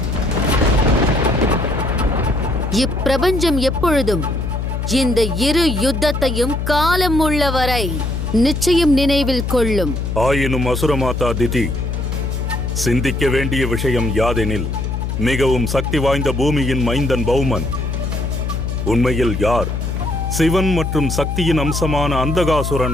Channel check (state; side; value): noise; left; hum, 2 dB below the sound